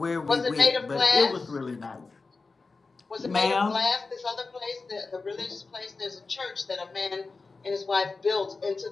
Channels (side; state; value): right; quieter; 4.0 dB